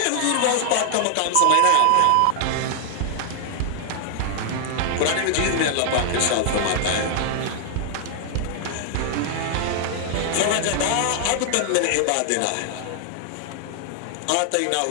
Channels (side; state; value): both; different; correlation 0.00